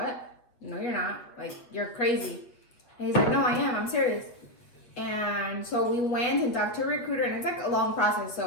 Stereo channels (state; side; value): late; right; 8.3 ms